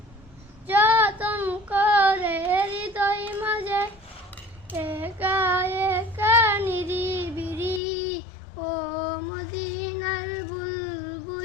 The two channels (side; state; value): right; drops out; at 7.8 s